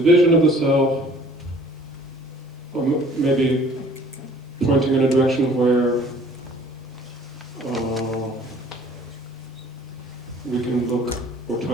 of the self, or maybe pointing in a direction where we can look or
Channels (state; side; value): normal; both; correlation 0.53